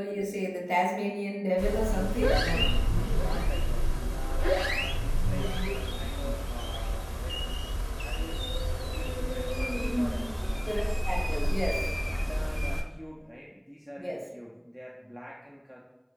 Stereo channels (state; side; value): identical; both; correlation 1.00